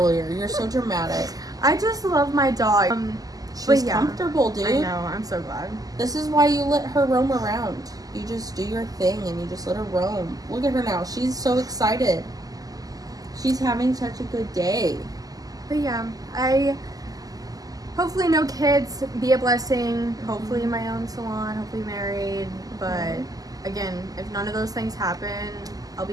You're so dramatic. I just love my dog. She's comfortable, dude. I know. I'm so glad. This is why you let her roam around. You just do your thing and you just let her roam. Look at her now. She's so excited. She's having such a good day. But yeah, I hopefully no kids, be a blessing. Hopefully my own salon. Hopefully married. But again, if none of those things happen, I'll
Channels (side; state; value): left; late; 0.17 ms